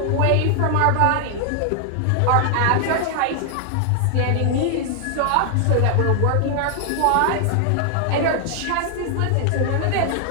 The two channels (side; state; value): both; different; correlation 0.00